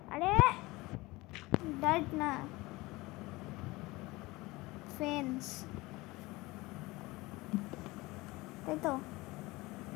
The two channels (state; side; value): quieter; right; 21.4 dB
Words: আরে ডাইট না, ফেন্স, তাই তো